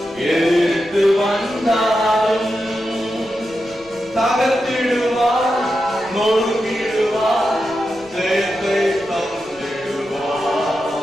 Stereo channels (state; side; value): noise; left; rumble, 26 dB below the sound